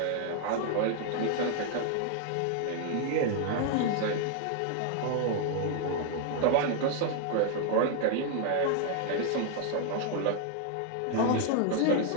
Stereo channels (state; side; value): different; both; correlation 0.00